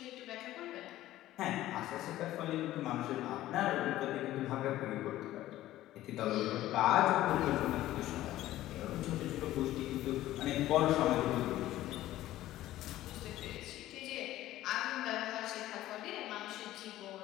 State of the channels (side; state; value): right; quieter; 14.8 dB